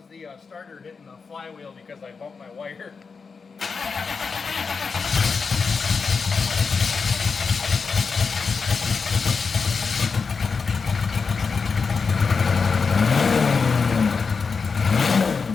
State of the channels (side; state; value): right; quieter; 5.1 dB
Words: the starter hitting the flywheel because I bumped my wire.